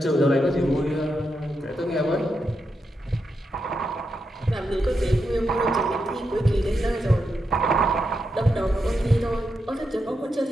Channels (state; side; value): normal; both; correlation 0.85